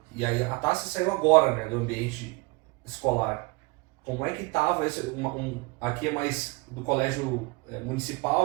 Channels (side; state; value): left; quieter; 26.2 dB